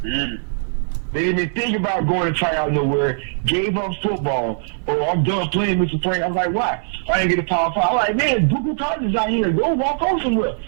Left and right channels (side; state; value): left; silent; digital silence